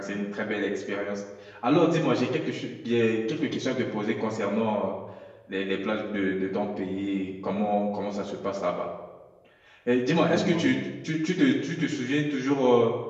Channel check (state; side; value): identical; both; correlation 1.00